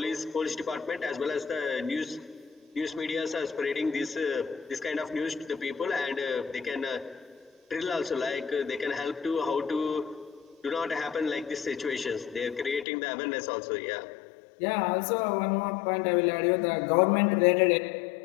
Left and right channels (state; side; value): drops out; right; at 12.9 s